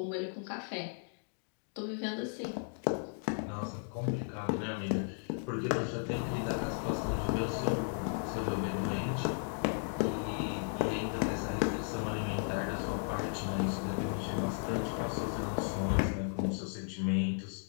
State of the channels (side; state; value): right; silent; 54 dB below the other